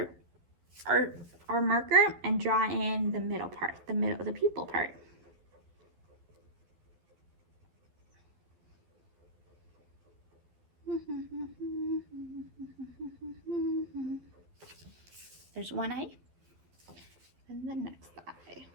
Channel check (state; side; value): late; left; 12 ms